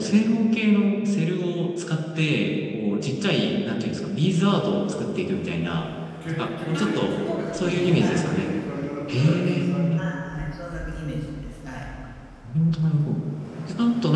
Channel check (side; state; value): both; identical; correlation 1.00